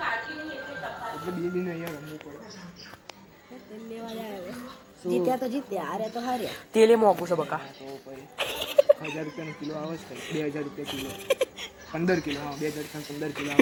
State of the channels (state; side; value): identical; both; correlation 1.00